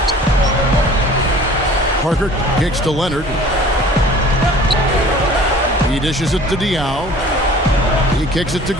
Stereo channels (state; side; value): normal; both; correlation 0.47